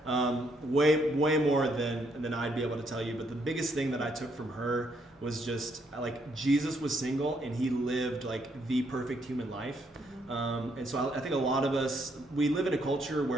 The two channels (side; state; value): both; normal; correlation 0.73